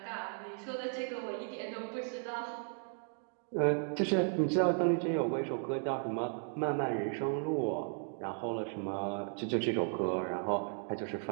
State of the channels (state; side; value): silent; left; 54 dB below the other